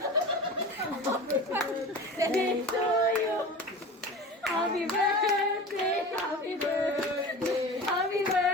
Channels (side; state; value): both; normal; correlation 0.34